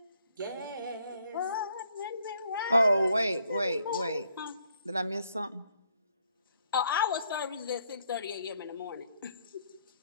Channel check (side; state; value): both; inverted; correlation -0.70